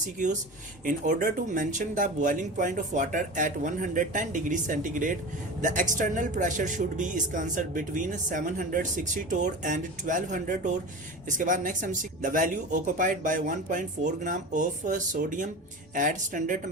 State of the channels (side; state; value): both; normal; correlation 0.30